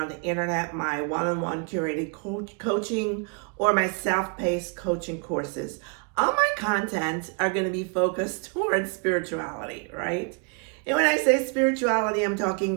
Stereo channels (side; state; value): left; quieter; 35.7 dB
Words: the internet, my one-on-one curated coaching or my self-paced coaching courses. All my content are going to be focused towards spirituality, right? And when I say spirituality, I'm